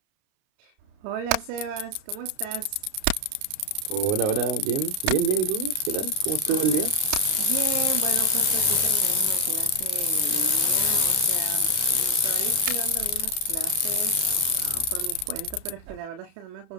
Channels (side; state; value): left; late; 32 ms